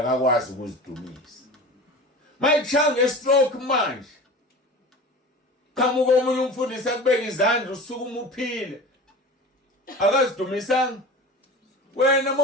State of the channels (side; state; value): both; normal; correlation 0.35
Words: ukuzidumisa mayichanga stroke manje qamuka omunye umfundisi akubeka izandla usukuma uphile akazidumisanga